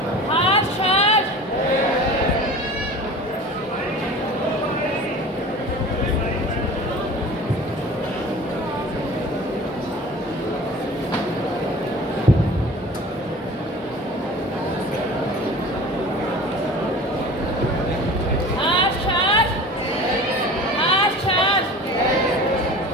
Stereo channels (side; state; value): both; normal; correlation 0.40